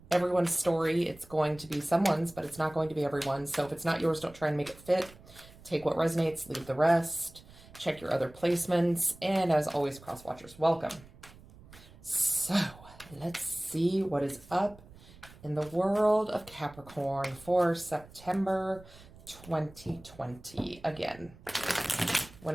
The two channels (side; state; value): right; noise; rumble, 22 dB below the sound